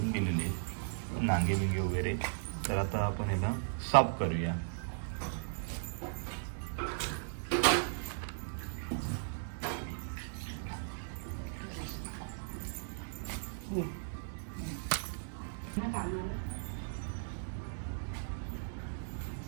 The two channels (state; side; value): silent; left; digital silence